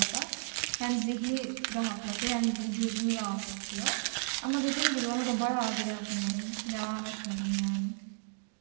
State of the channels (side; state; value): left; silent; 56 dB below the other